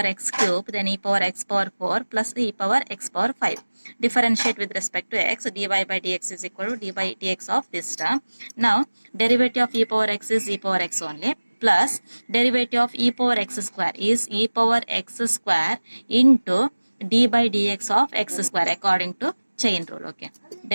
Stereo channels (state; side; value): inverted; both; correlation -1.00